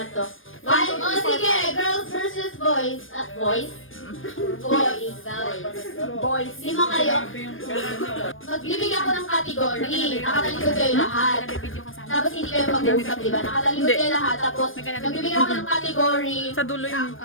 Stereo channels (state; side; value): late; right; 0.59 ms